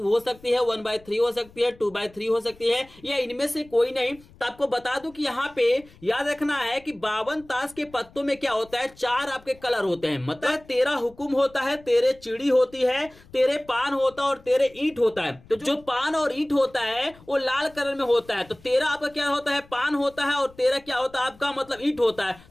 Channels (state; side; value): noise; left; rumble, 25 dB below the sound